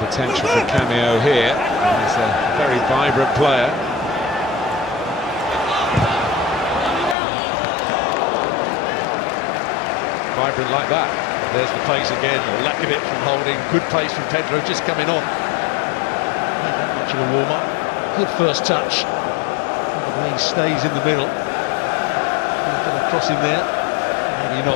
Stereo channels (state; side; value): drops out; right; at 7.2 s